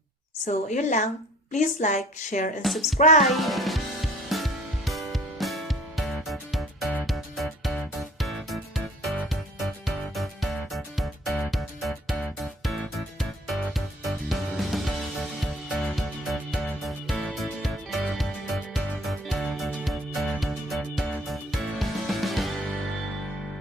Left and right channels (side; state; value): both; normal; correlation 0.54